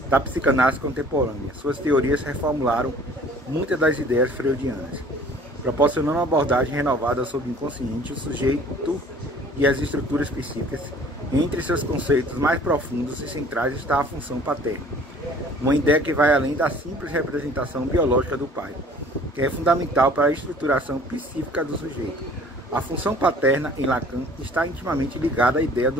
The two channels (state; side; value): normal; both; correlation 0.51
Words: da psicanálise contemporânea. Suas teorias reformularam muitas das ideias freudianas, proporcionando uma abordagem renovada sobre o inconsciente, o sujeito e as estruturas psíquicas. Entre seus conceitos mais profundos e centrais está a função paterna, uma ideia que vai além da simples representação biológica do pai, que é fundamental para a estruturação psíquica do sujeito. A função paterna, em Lacan, está intimamente ligada à ideia